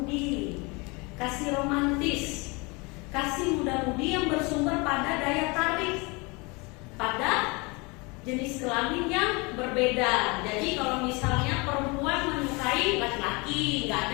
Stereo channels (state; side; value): quieter; right; 27.7 dB